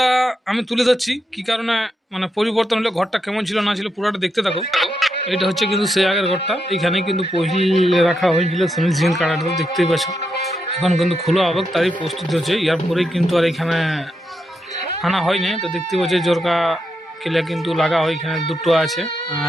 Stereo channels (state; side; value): normal; both; correlation 0.83